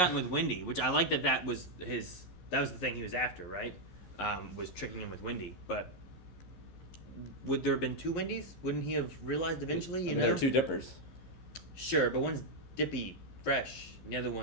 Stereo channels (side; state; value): right; late; 15 ms